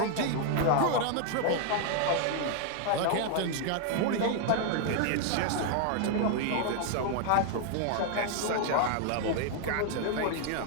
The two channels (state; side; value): different; both; correlation 0.00